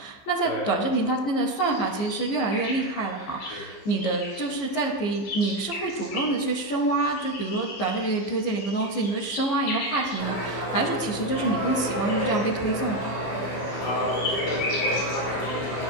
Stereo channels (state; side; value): late; right; 15 ms